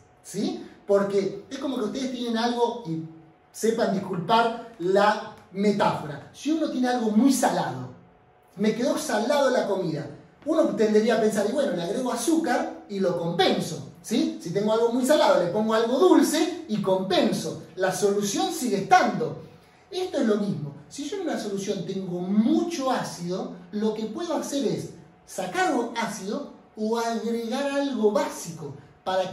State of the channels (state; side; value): identical; both; correlation 1.00